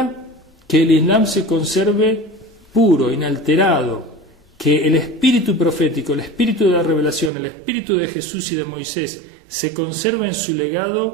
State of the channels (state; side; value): drops out; left; at 7.3 s